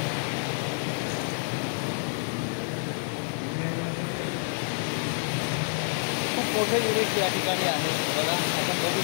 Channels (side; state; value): right; silent; 59 dB below the other